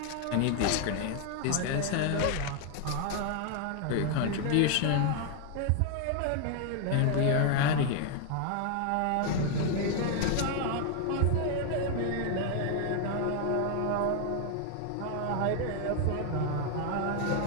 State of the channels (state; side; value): different; both; correlation 0.00